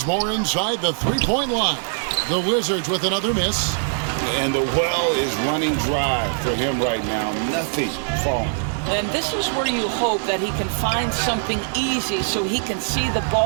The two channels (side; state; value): left; silent; digital silence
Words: inside the three-point line. The Wizards with another miss. And the well is running dry for him right now. Nothing falling. And this is where you hope that he can find something easy so he can see the